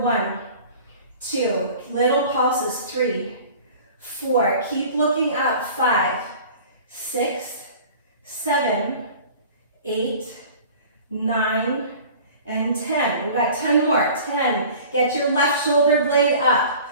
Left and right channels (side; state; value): both; inverted; correlation -0.44